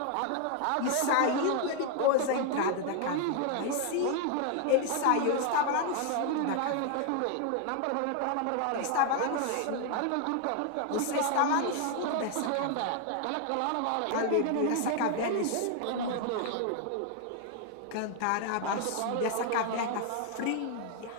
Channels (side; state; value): both; different; correlation 0.00